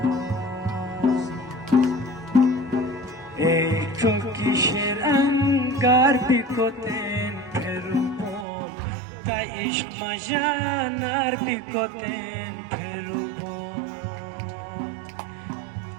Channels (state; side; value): drops out; left; at 8.5 s